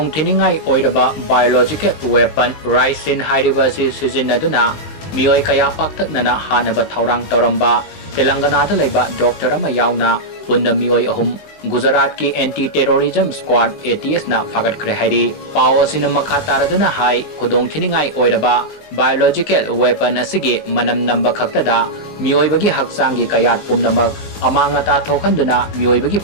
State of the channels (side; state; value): right; late; 20 ms